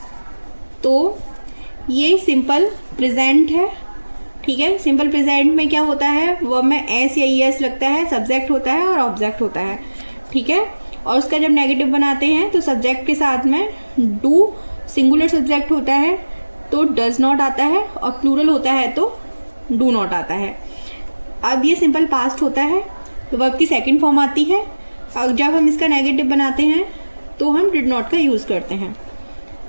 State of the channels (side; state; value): both; inverted; correlation -1.00